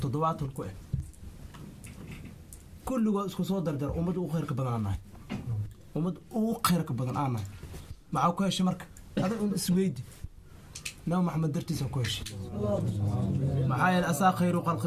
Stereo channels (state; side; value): identical; both; correlation 1.00